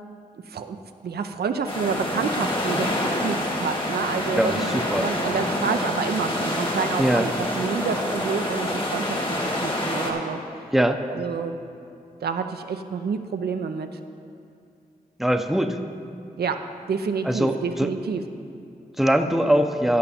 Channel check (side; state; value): both; normal; correlation 0.61